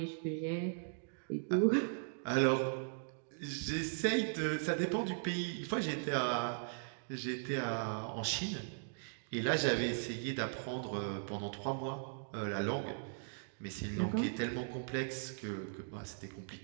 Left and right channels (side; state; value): left; silent; digital silence